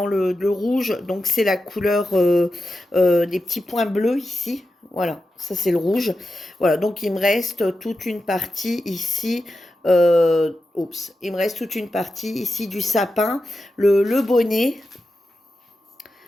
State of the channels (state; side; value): normal; both; correlation 0.90